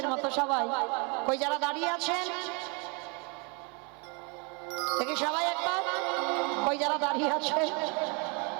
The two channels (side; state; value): left; quieter; 32.6 dB